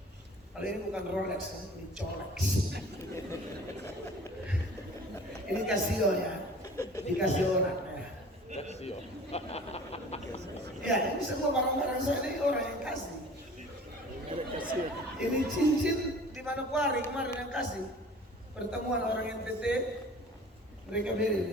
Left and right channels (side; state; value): both; normal; correlation 0.45